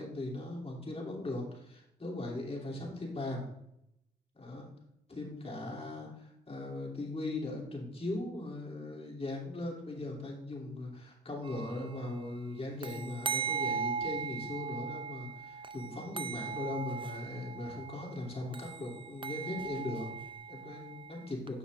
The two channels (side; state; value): both; normal; correlation 0.38